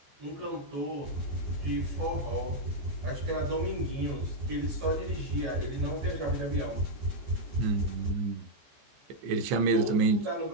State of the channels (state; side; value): late; left; 15 ms